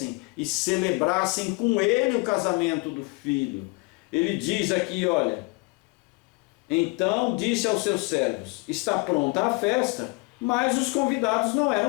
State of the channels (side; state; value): right; quieter; 27.7 dB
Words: e celebrassem com ele o casamento do filho. Ele diz aqui, olha: então disse aos seus servos, está pronta a festa, mas os convidados não